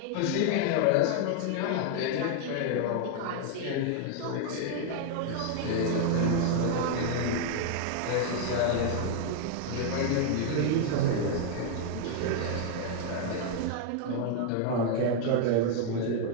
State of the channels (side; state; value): both; different; correlation 0.00